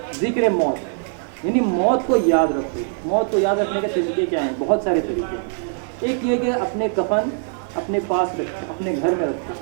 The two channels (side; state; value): left; silent; 62 dB below the other